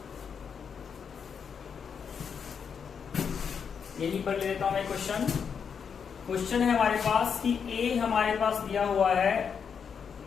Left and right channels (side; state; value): right; quieter; 6.8 dB